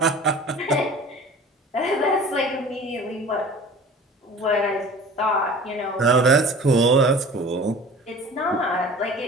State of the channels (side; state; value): both; normal; correlation 0.42